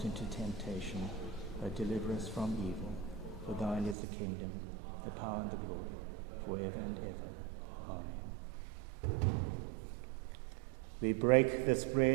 into temptation, but deliver us from evil. For thine is the kingdom, the power and the glory, forever and ever. Amen. We break this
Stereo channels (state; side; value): drops out; left; at 4.0 s